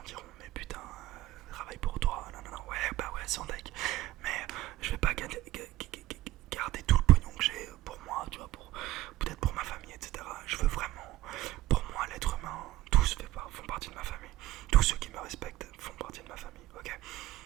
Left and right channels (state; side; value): quieter; left; 15.7 dB